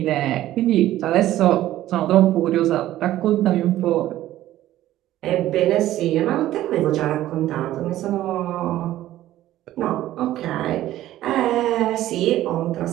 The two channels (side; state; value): left; quieter; 14.1 dB